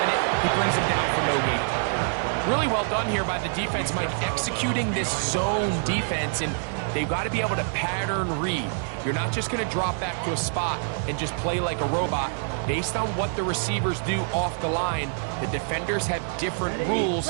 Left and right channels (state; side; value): silent; left; 61 dB below the other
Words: it, he brings him down for no gain. Really well done here by the defense, Mike, executing this zone defense, and they've got to be able to pattern read. You're not just going to drop back to a spot and just play like a robot. Based on what the receivers do off the line, the defenders have different rules